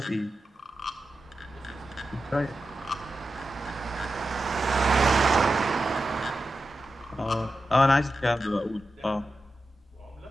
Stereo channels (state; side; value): normal; both; correlation 0.91